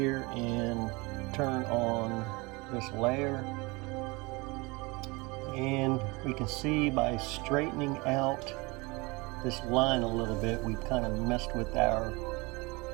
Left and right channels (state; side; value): quieter; left; 25.7 dB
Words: and turn on this layer. And we can see by straightening out this line a little bit, we've kind of messed with our